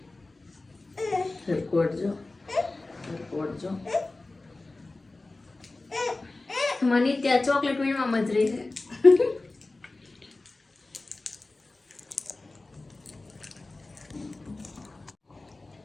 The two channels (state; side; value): quieter; right; 3.2 dB